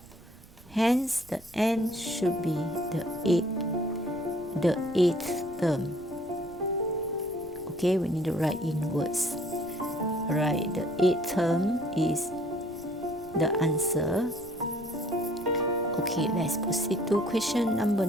Hence the n should be the eighth term. Okay, we need to write in words. Right, the eighth term is the answer. Okay, let's proceed to question number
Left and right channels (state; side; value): noise; right; rumble, 23 dB below the sound